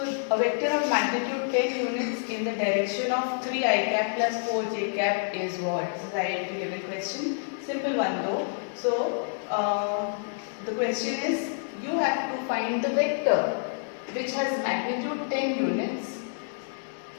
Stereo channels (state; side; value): silent; right; digital silence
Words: a vector of magnitude 10 units in the direction of 3 I cap plus 4 j cap is what? This is identity given question. Simple one though. So the question is, you have to find the vector which has magnitude 10 units